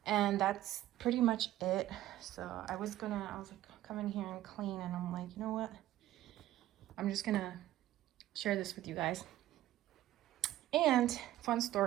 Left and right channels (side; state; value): left; quieter; 14.2 dB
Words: And that's pretty much it. So I was like, come in here and clean, and I'm like, you know what? I'm just gonna share this with you guys. And fun